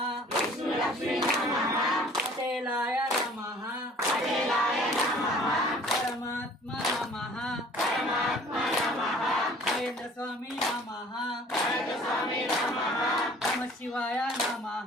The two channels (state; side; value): normal; both; correlation 0.51